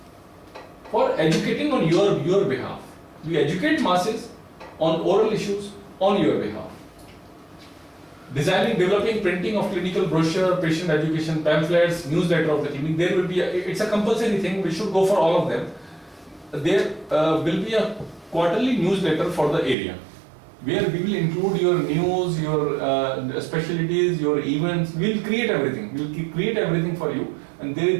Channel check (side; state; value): left; drops out; at 19.8 s